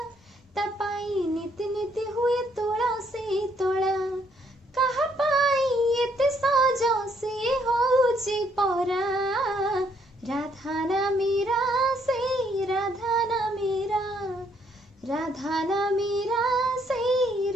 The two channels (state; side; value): normal; both; correlation 0.69